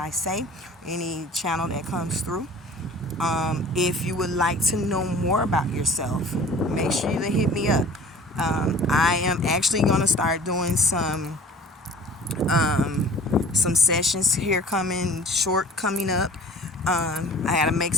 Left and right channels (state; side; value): normal; both; correlation 0.46